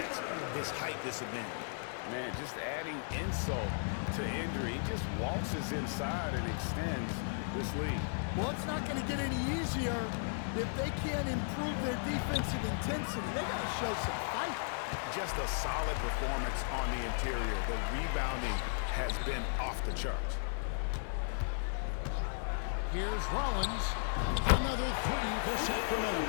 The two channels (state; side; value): silent; right; digital silence